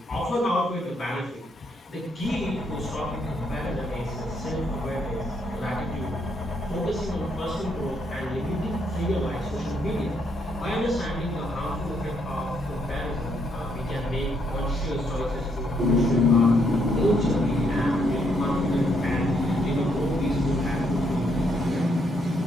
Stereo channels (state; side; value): normal; both; correlation 0.74